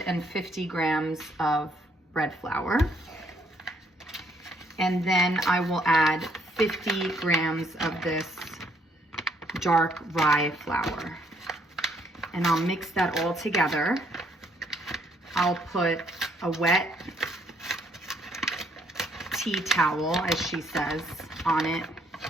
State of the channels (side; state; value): both; normal; correlation 0.69